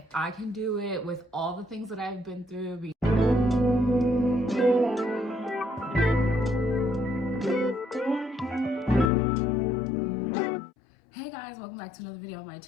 I can do it with all the things that I've been through. Hey guys, welcome back to another video on my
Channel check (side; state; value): right; drops out; at 9.1 s